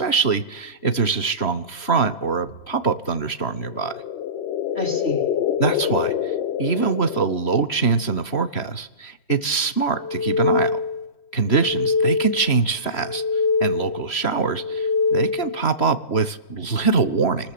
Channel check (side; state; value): right; late; 3.0 ms